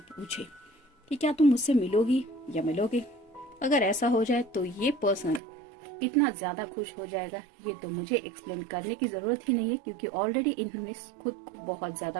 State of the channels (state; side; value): drops out; left; at 5.4 s